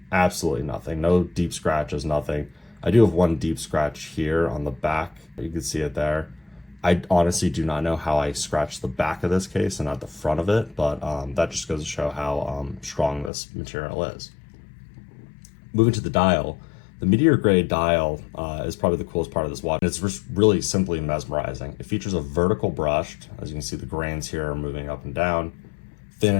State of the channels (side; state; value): right; drops out; at 13.3 s